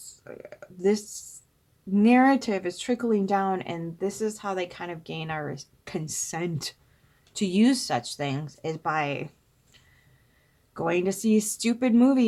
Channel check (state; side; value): identical; both; correlation 1.00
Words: This narrative is trickling down, and this is how they kind of gain our consent to use such things, is by going to see stupid